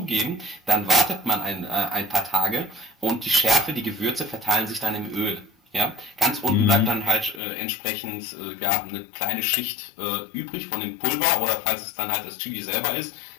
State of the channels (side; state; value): right; drops out; at 7.4 s